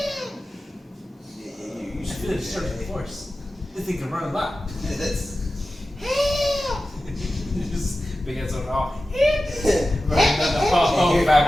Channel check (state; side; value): normal; both; correlation 0.94